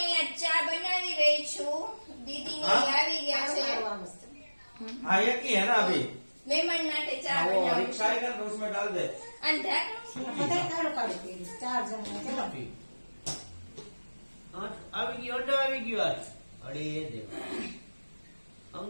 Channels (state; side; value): inverted; both; correlation -1.00